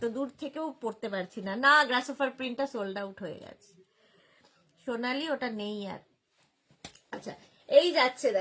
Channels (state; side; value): identical; both; correlation 1.00